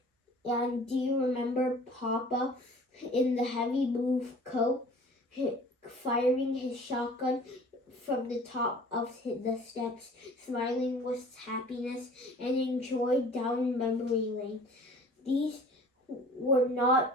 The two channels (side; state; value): both; normal; correlation 0.47